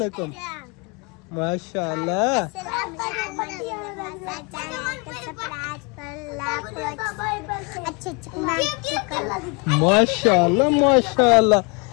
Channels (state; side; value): quieter; right; 31.0 dB